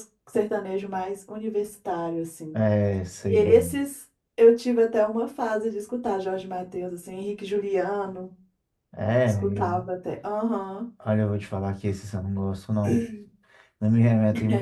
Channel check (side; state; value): both; identical; correlation 1.00